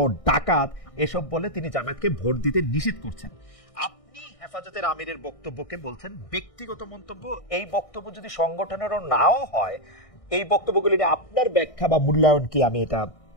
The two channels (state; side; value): late; right; 1.6 ms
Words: ডাকাত, এসব বলে তিনি জামায়াতকে ভোট দিতে নিষেধ করছেন। আপনি হেফাজতের আমিরের বক্তব্যকে বলছেন ব্যক্তিগত মন্তব্য। এই বক্তব্য যদি সংগঠনেরও নাও হয়, এই বক্তব্যগুলি নিয়ে আপনার ব্যাখ্যা বা মূল্যায়ন কি, আমি এটা